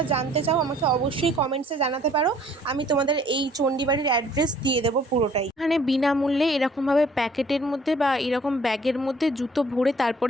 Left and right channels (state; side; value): normal; both; correlation 0.57